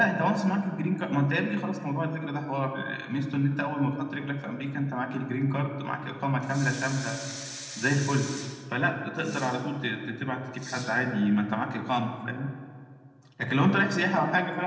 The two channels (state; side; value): identical; both; correlation 1.00